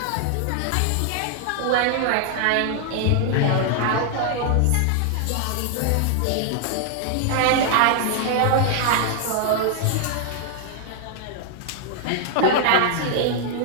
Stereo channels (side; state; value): both; different; correlation 0.00